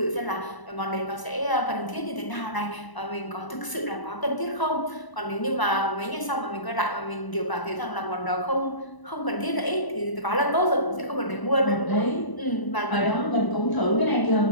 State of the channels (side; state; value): right; late; 1.0 ms